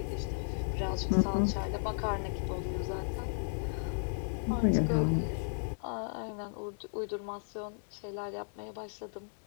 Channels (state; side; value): silent; right; 55 dB below the other